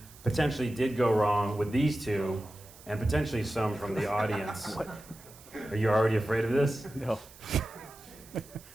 potentially did go wrong with these two, and potentially some from the audience. Are you already afraid of this? No.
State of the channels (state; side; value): noise; right; hiss, 21 dB below the sound